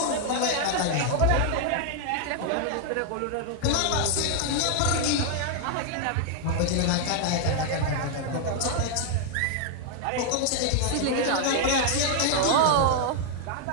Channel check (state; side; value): different; both; correlation 0.00